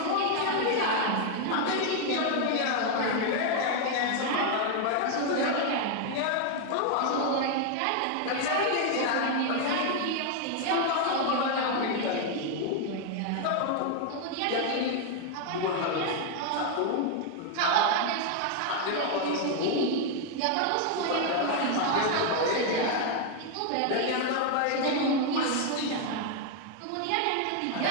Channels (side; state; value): both; different; correlation 0.00